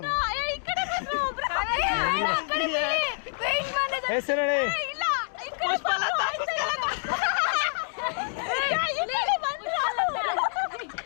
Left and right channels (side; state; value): right; silent; 60 dB below the other